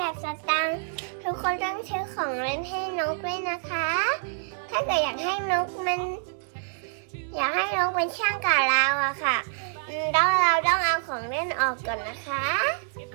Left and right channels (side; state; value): left; silent; 60 dB below the other